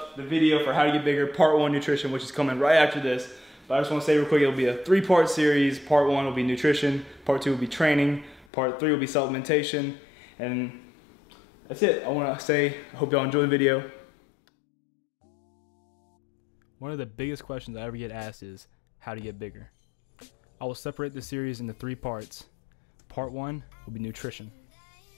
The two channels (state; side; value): drops out; right; at 8.5 s